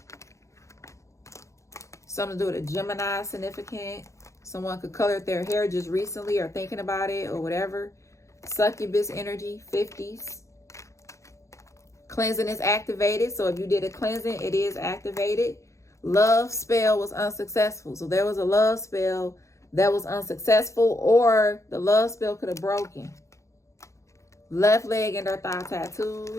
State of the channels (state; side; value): late; right; 0.15 ms